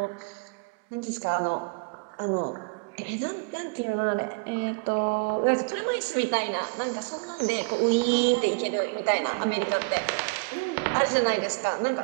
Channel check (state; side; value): quieter; left; 32.9 dB